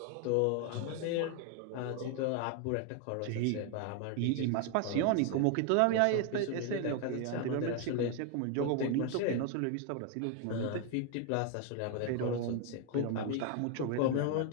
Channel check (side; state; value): both; different; correlation 0.01